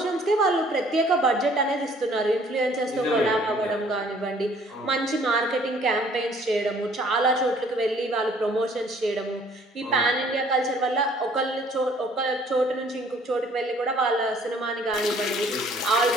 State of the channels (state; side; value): normal; both; correlation 0.58